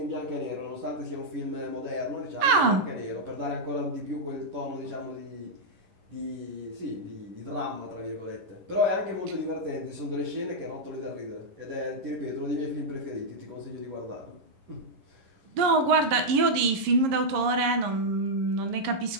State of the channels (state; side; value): late; left; 11 ms